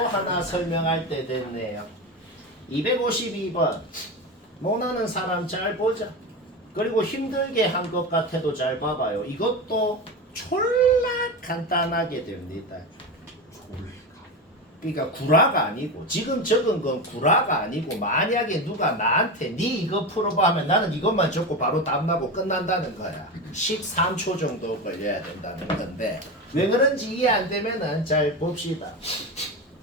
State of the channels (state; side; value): normal; both; correlation 0.21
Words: 설명할 때 됐네요. 252번. 못하는 사람 잘 보자. 그리고 힘들게 한 것 같아도 잘 봐봐요. 이것도 졸라 간단하게 됩니다. 그러니까 구라가 아니고 지금 적은 건 구라가 아니고 만약에 누가 나한테 니 이거 풀어봐 하면 나는 이것만 적고 바로 답나고 끝난다는 거야. 13초 정도 걸려야 된다는 건데 왜 그런지 이해 안 되면은 잘 봅시다.